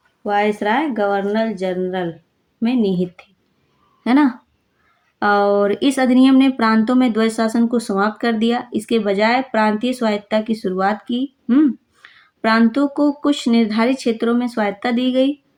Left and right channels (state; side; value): identical; both; correlation 1.00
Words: वायसराय गवर्नर जनरल में निहित थी, है ना। और इस अधिनियम ने प्रांतों में द्वैध शासन को समाप्त कर दिया। इसके बजाय प्रांतीय स्वायत्तता की शुरुआत की। प्रांतों को कुछ निर्धारित क्षेत्रों में स्वायत्तता